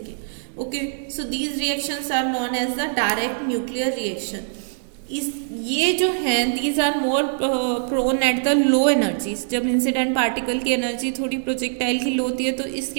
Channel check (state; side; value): silent; left; digital silence